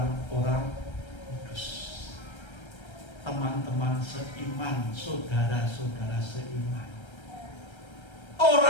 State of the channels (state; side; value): late; right; 1.3 ms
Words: kudus. Teman-teman seiman, saudara-saudara seiman.